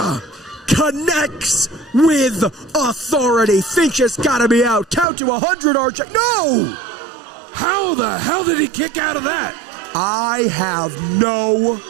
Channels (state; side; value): drops out; left; at 5.1 s